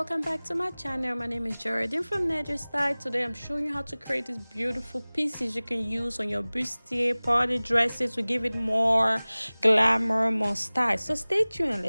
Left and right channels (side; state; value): both; inverted; correlation -1.00